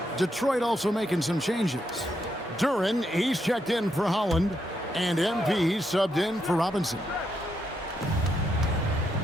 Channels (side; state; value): both; normal; correlation 0.80